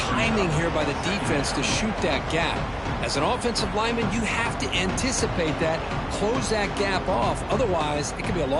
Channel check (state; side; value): identical; both; correlation 1.00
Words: here by the defense to shoot that gap? As an offensive lineman, you have to anticipate that, close that gap off. Otherwise, it could be a